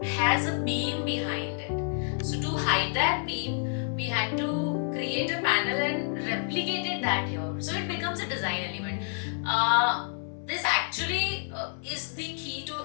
has a beam behind it. So to hide that beam, we had to create a panel and replicated that here. So it becomes a design element. This actually is the key to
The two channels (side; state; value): right; silent; 59 dB below the other